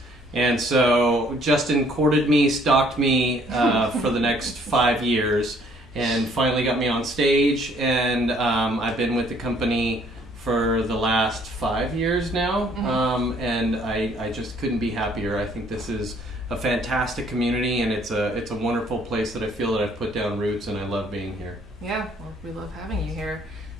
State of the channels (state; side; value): normal; both; correlation 0.62